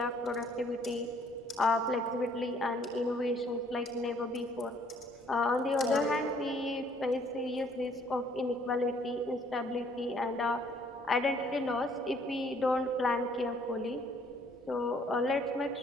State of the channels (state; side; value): normal; both; correlation 0.62